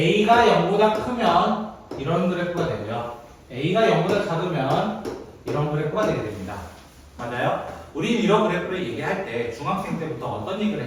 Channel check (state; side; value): identical; both; correlation 1.00